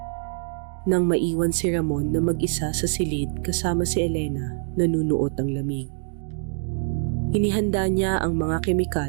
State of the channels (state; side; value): silent; left; digital silence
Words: Nang maiwan si Ramon na mag-isa sa silid kasama si Elena, nanunuot ang lamig. Inihanda niya ang mga